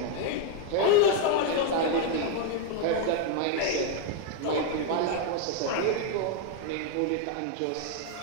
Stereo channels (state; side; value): different; both; correlation 0.01